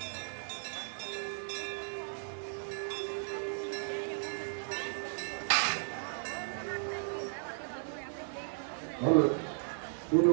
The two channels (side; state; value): left; silent; digital silence